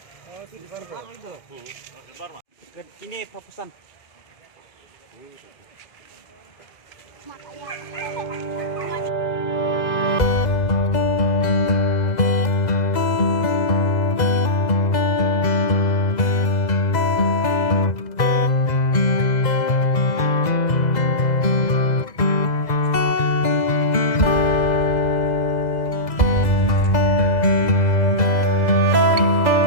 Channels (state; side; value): late; right; 2.0 ms